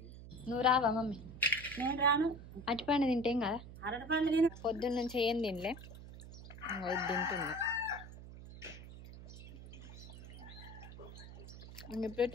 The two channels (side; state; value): right; noise; hum, 14 dB below the sound